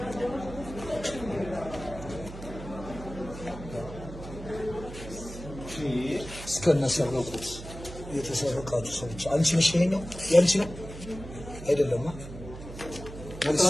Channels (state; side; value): noise; right; hum, 12 dB below the sound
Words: እስከነሰረቁት የተሰረቃችሁ ሰዎች አንቺ ነሽ። ይሄኛው ያንቺ ነው አይደለም?